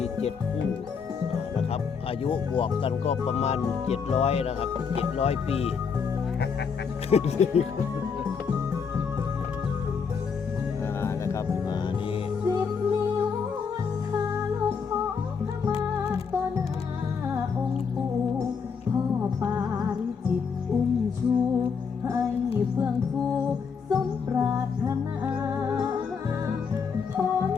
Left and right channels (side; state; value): right; quieter; 6.0 dB